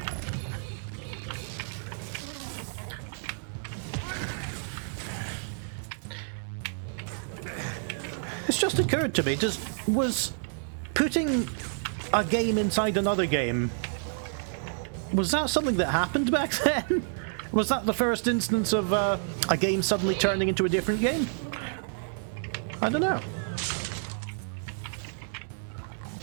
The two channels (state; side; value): silent; left; digital silence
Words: It's just occurred to me, was putting a game inside another game, was that something that happened back then? Was that the first instance of a game suddenly turning into a different game? I don't know.